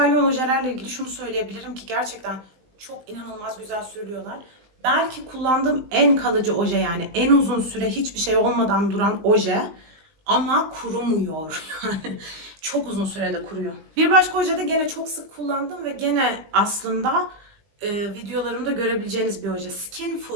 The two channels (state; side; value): late; left; 19 ms